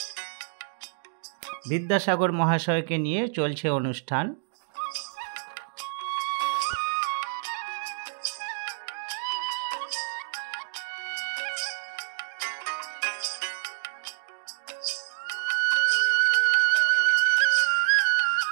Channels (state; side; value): silent; left; digital silence